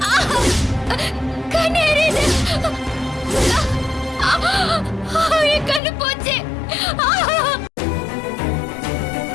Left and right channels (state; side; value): drops out; right; at 5.8 s